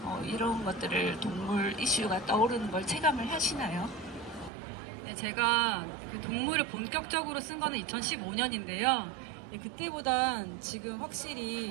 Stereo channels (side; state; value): left; drops out; at 4.5 s